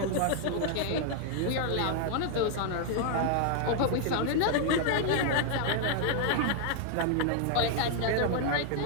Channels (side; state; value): both; different; correlation 0.00